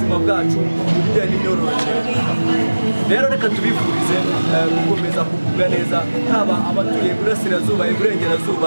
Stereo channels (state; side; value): inverted; both; correlation -1.00